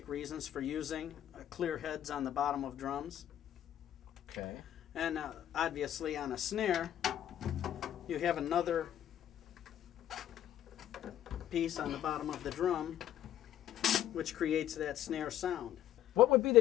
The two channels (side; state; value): right; quieter; 11.5 dB